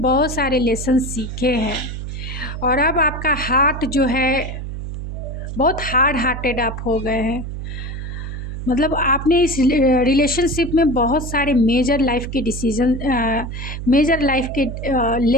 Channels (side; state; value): right; noise; hum, 7 dB below the sound